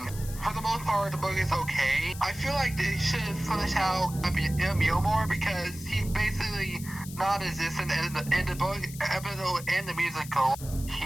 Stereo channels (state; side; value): noise; left; hiss, 14 dB below the sound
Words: For the most part, the book is okay. I feel like they should finish out Emil more because he's basically non-existent in the book episode and the musical. He